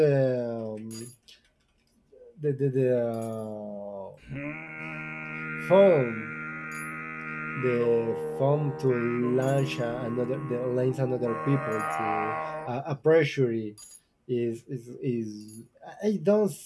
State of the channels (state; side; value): identical; both; correlation 1.00